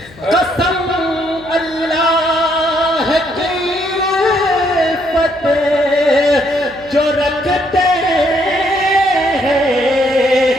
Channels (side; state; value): left; noise; hum, 23 dB below the sound